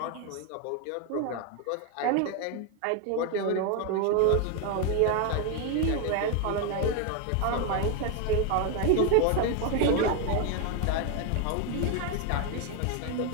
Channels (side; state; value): both; different; correlation 0.01